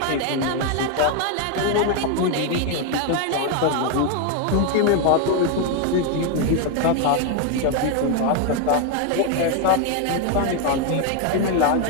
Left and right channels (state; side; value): different; both; correlation 0.01